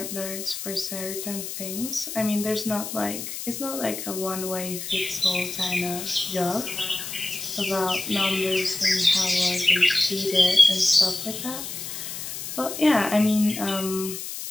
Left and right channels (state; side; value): noise; left; hiss, 7 dB below the sound